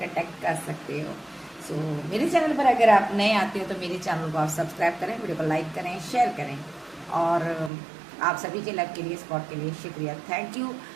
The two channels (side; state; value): left; drops out; at 7.7 s